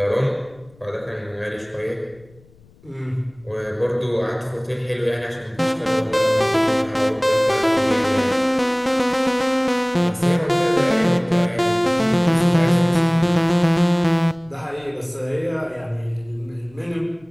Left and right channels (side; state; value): left; noise; rumble, 28 dB below the sound